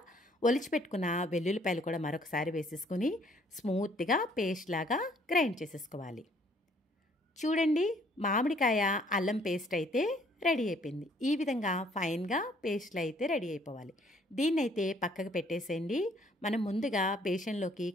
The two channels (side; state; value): both; normal; correlation 0.62